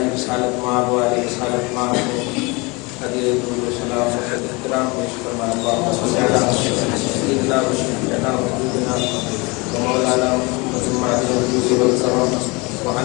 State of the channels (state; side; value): quieter; right; 26.8 dB